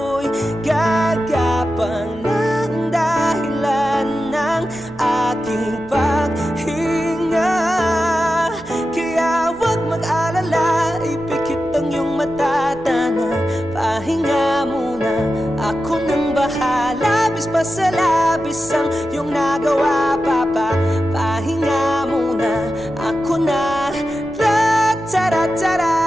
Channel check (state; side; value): noise; right; hum, 20 dB below the sound